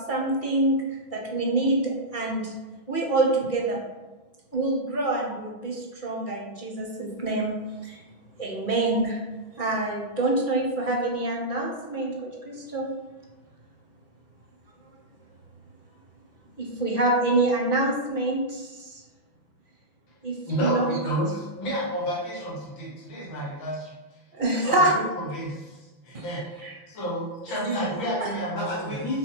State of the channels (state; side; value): late; right; 6.0 ms